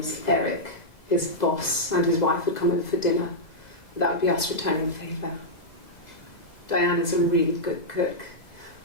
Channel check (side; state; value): right; late; 2.0 ms